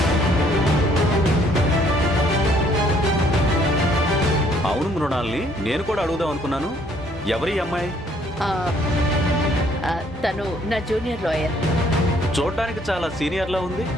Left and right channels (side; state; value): both; normal; correlation 0.64